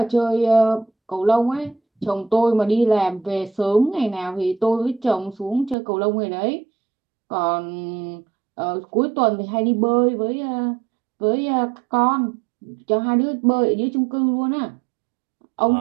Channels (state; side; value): drops out; left; at 5.8 s